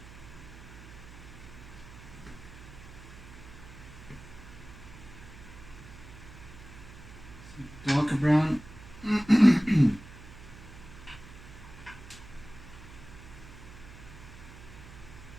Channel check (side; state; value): right; noise; hum, 16 dB below the sound